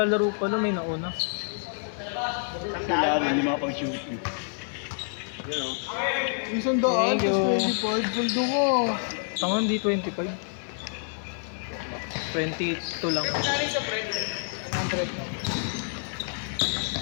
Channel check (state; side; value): silent; right; digital silence